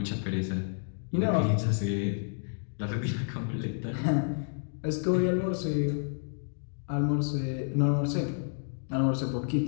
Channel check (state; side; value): silent; right; digital silence